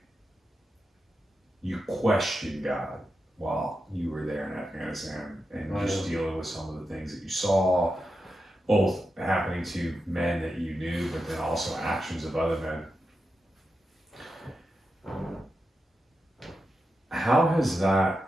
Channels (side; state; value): both; normal; correlation 0.89